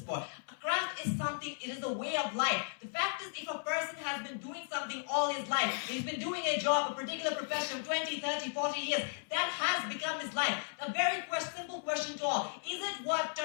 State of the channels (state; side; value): silent; right; 54 dB below the other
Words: for. A craft is something, it is a way of life. The fact is, if a person has been doing something all his life, he's been doing a job, a particular profession, 20, 30, 40 years, that has become his life. A very simple question to all. Is it worth